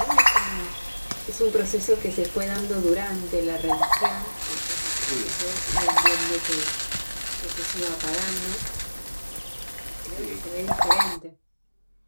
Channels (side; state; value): both; inverted; correlation -1.00